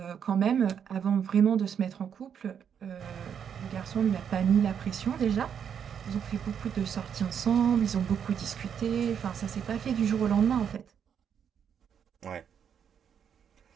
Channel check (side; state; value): left; quieter; 7.9 dB